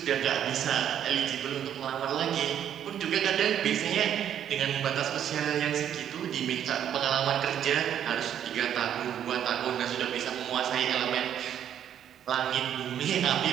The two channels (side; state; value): left; quieter; 9.8 dB